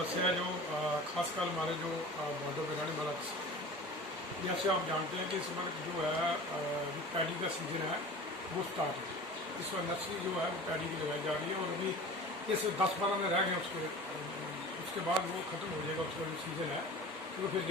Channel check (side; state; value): both; normal; correlation 0.38